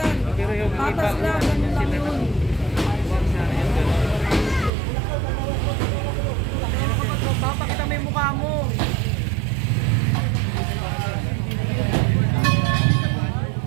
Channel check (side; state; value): left; drops out; at 4.7 s